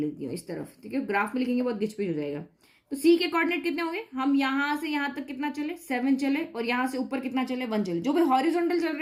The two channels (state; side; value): identical; both; correlation 1.00